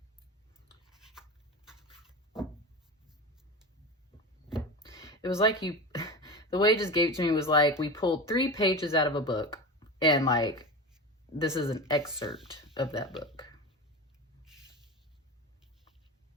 It was like the way it just gave it to me was like we pulled 3 pages out of a book, and like this is an excerpt of that book.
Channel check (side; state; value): both; normal; correlation 0.26